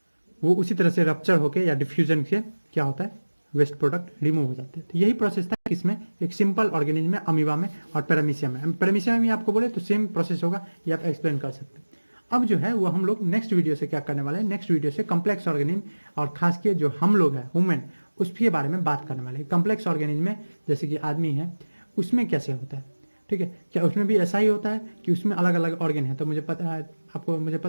वो उसी तरह से रप्चर होकर या डिफ्यूजन से क्या होता है, वेस्ट प्रोडक्ट रिमूव हो जाते हैं। तो यही प्रोसेस था इसमें, एक सिंपल ऑर्गेनिज्म में, अमीबा में और पैरामीशियम में। पैरामीशियम में भी आपको बोले तो सेम प्रोसेस होगा, ये आप एक्सप्लेन कर सकते हैं। अब जो है वो हम लोग नेक्स्ट वीडियो से क्या करने वाले हैं, नेक्स्ट वीडियो से कम्प्लेक्स ऑर्गेनिज्म, और खास के जो हम लोग हैं ह्यूमन, उसके बारे में बात करने वाले हैं। कम्प्लेक्स ऑर्गेनिज्म में जैसे कि आदमी है, उसमें कैसे होता है, ठीक है, क्या उसमें भी ऐसा ही होता है कि उसमें अलग अलग ऑर्गन है? तो मुझे पता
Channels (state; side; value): inverted; both; correlation -1.00